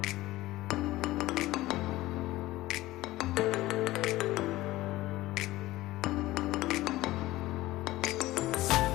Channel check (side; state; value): right; quieter; 17.4 dB